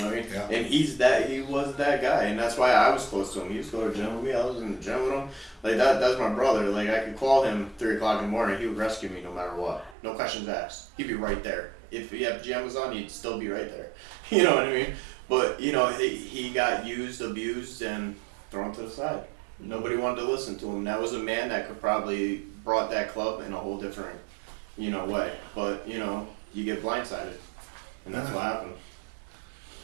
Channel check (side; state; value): left; drops out; at 10.0 s